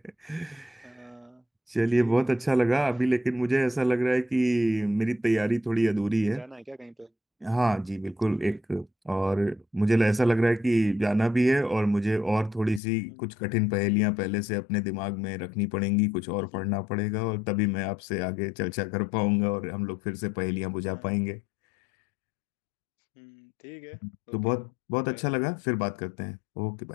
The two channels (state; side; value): drops out; right; at 12.8 s